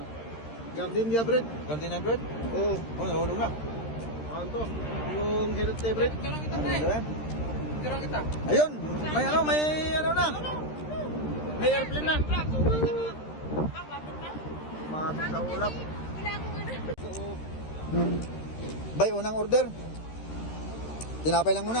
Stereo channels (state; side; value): late; right; 13 ms